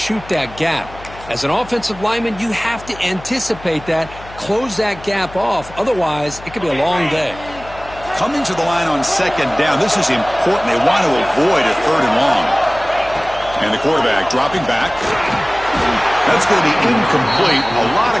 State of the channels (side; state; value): left; noise; hum, 18 dB below the sound